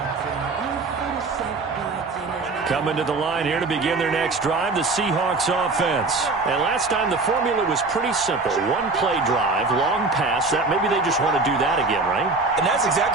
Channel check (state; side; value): quieter; left; 3.6 dB